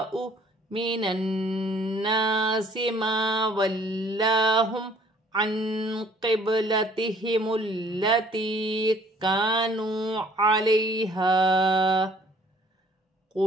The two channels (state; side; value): normal; both; correlation 0.57